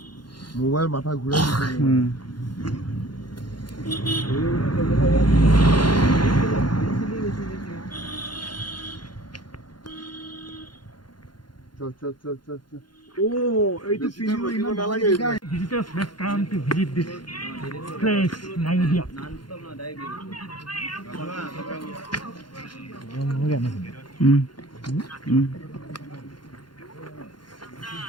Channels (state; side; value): late; right; 0.71 ms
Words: মোবাইল মাথা ঘূৰাই চল Oh, itu video ini nalange. Visitors must come to visit this place, Nayudia.